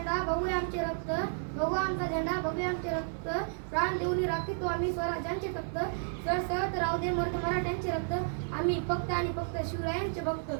भगवे आमचे रक्त, भगवानचा झेंडा भगवे आमचे रक्त. प्राण देऊन राखीतो आम्ही स्वराज्याचे तख्त, सळसळत राहू दे मर्द मराठ्यांचे रक्त. आम्ही फक्त आणि फक्त शिवरायांचे भक्त.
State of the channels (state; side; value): silent; left; digital silence